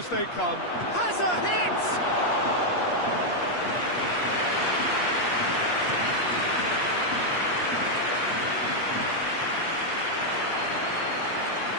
they come. Has a hit!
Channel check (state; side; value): late; right; 8.4 ms